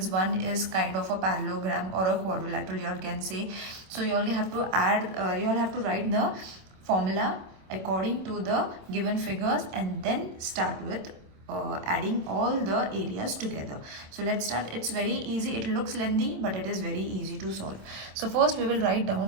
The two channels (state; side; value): late; left; 26 ms